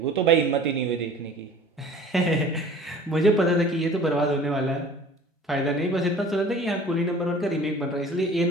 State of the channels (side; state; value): both; normal; correlation 0.46